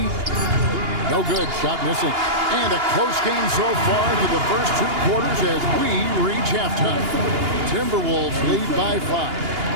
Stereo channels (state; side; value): late; left; 2.8 ms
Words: No good. Shot missing. And a close game so far through the first 2 quarters as we reach halftime. Timberwolves lead by 5.